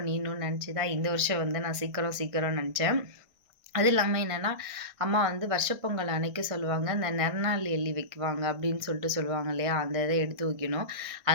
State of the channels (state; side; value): late; left; 1.6 ms